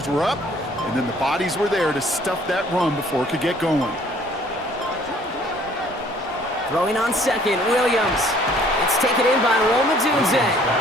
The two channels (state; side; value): normal; both; correlation 0.58